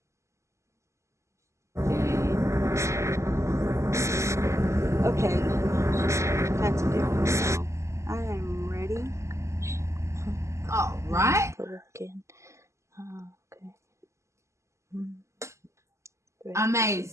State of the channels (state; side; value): late; left; 0.14 ms